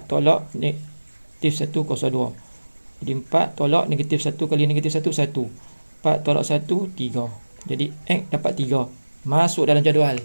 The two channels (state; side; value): inverted; both; correlation -1.00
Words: tolak negatif 1 kuasa 2. Jadi 4 tolak negatif 1 kali negatif 1, 1. 4 tolak 1, 3. Jadi X dapat 3. Masuk dalam jadual.